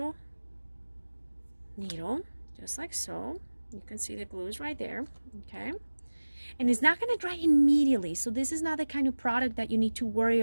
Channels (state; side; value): inverted; both; correlation -1.00